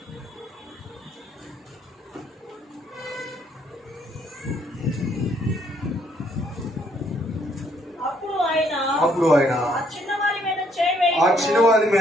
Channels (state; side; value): normal; both; correlation 0.68